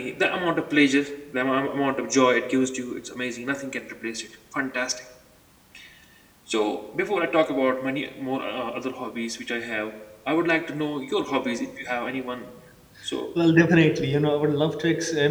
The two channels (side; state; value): both; identical; correlation 1.00